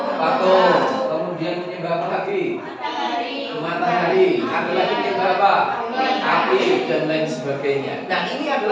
Patung. Kemudian menyembah apa lagi? Matahari. Ada lagi menyembah apa? Api dan lain sebagainya. Nah, ini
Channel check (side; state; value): both; identical; correlation 1.00